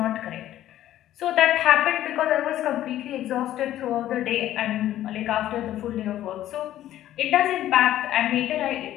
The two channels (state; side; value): quieter; right; 13.0 dB